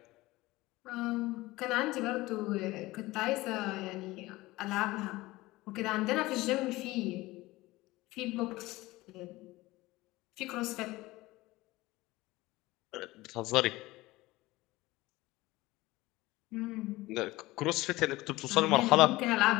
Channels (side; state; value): right; quieter; 19.3 dB